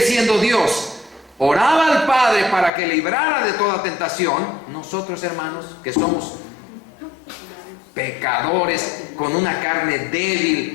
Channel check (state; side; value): drops out; right; at 2.7 s